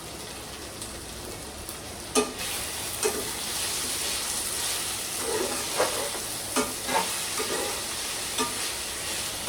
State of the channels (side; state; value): both; identical; correlation 1.00